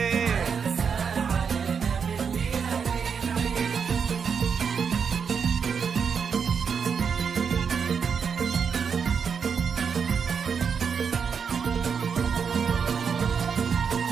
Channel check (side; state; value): left; quieter; 6.4 dB